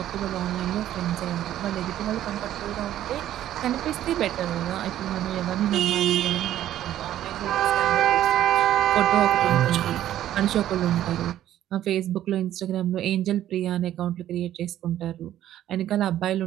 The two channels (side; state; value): left; quieter; 12.3 dB